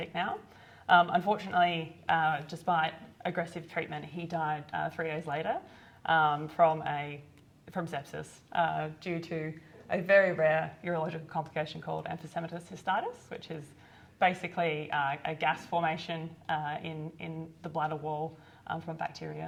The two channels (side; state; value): both; identical; correlation 1.00